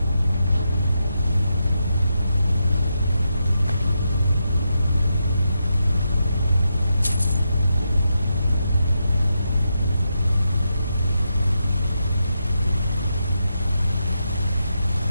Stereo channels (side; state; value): both; inverted; correlation -0.85